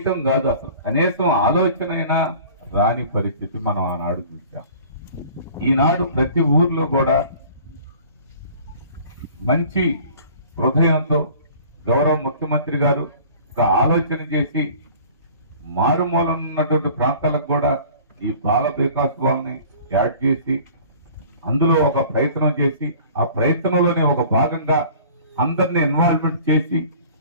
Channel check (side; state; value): both; inverted; correlation -0.47